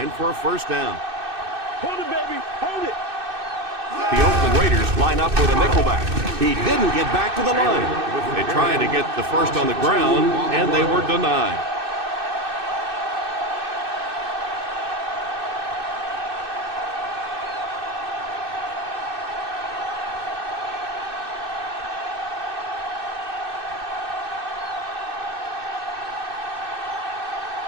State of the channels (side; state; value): left; late; 2.6 ms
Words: for a first down. Hold it, baby. Hold it. The Oakland Raiders line up with a nickelback. He didn't get back to the line. They tried to get the first on the ground, and they were denied.